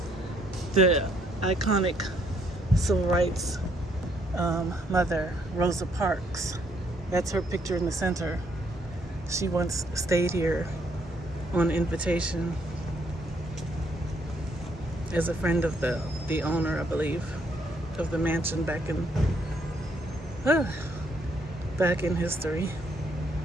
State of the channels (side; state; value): both; normal; correlation 0.70